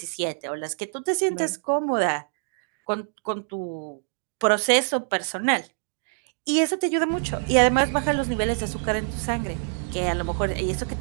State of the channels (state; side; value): silent; left; digital silence